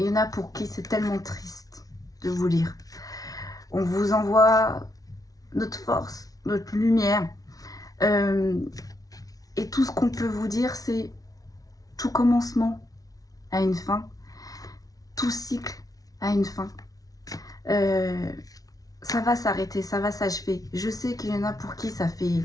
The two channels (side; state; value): right; late; 0.18 ms